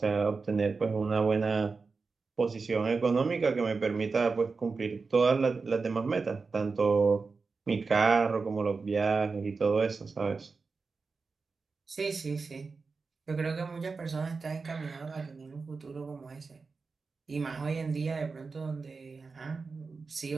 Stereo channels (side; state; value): left; quieter; 4.5 dB